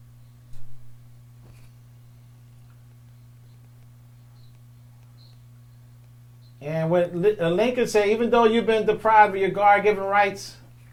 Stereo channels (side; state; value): both; identical; correlation 1.00